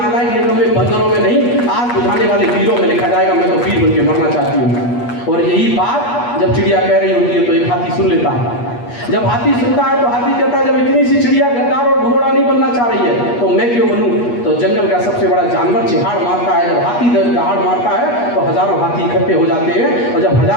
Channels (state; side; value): late; right; 8.3 ms